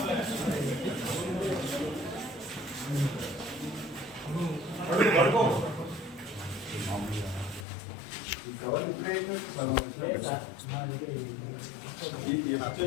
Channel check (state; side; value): drops out; right; at 7.7 s